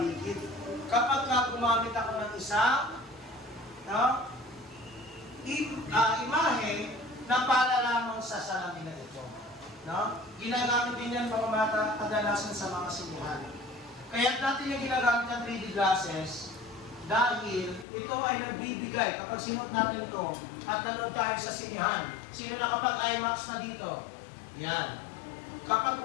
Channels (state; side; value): drops out; right; at 17.9 s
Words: Kapag gumamit ako ng isang imahe na para lamang sa salamin na ito. No? Ginagamit din yan mga bata kadalasan sa mga sinihan. Kaya natin yung ginagamit ng 3D glasses dahil ito ay nagbibigay kapag sinuot natin ito at nanood tayo sa sinihan. Sino nakapag-IMAX na dito? Yan. Kapag